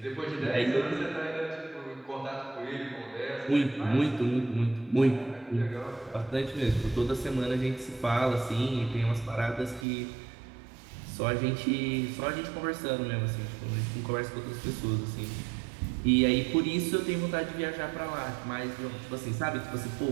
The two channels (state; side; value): drops out; left; at 9.9 s